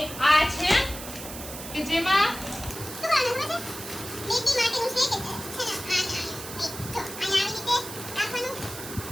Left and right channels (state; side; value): noise; right; hiss, 11 dB below the sound